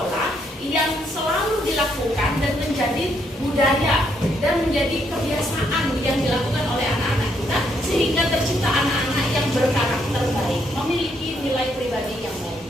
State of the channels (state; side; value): normal; both; correlation 0.74